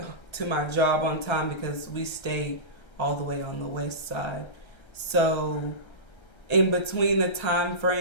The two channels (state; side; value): late; right; 1.3 ms